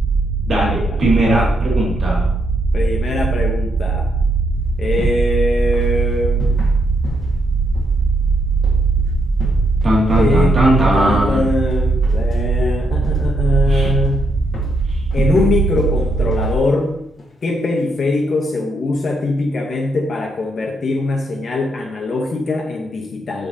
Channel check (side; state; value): both; normal; correlation 0.77